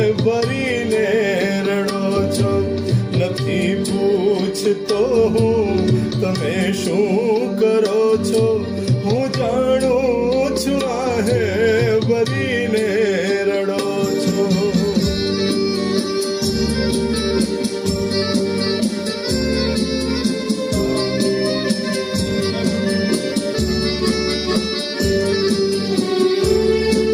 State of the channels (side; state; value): both; identical; correlation 1.00